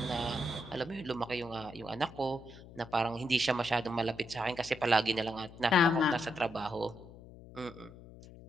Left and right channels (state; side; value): noise; left; hum, 18 dB below the sound